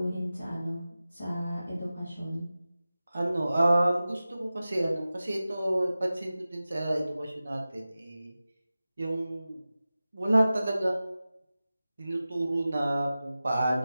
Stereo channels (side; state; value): both; inverted; correlation -0.95